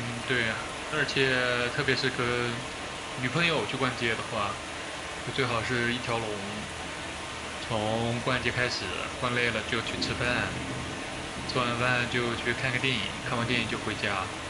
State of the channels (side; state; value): both; identical; correlation 1.00